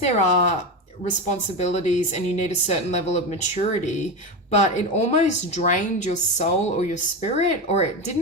are responsibilities and you need a certain level of maturity, but it almost drained your soul or your spirit, or it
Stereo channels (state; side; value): normal; both; correlation 0.18